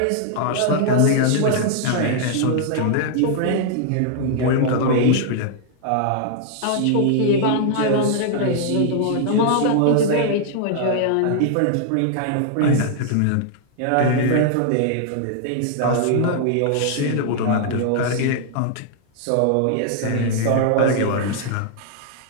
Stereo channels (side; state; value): both; different; correlation -0.01